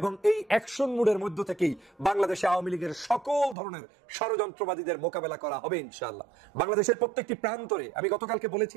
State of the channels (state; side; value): drops out; left; at 3.6 s